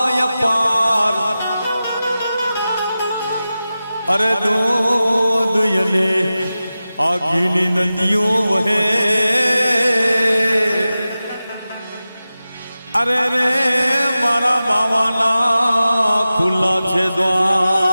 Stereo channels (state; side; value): inverted; both; correlation -0.94